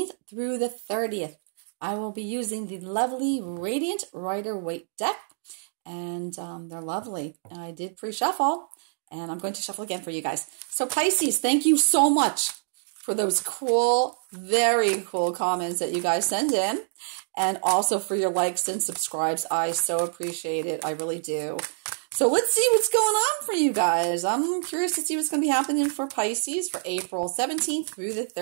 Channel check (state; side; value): silent; left; digital silence